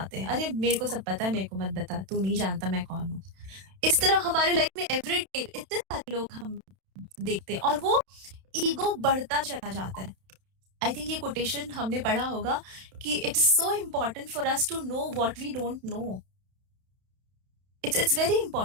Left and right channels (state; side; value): late; left; 31 ms